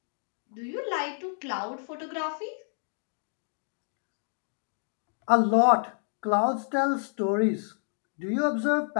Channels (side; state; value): right; silent; digital silence